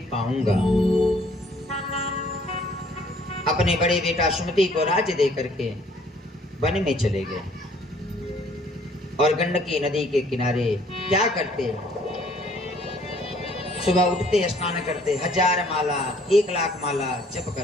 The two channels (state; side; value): normal; both; correlation 0.59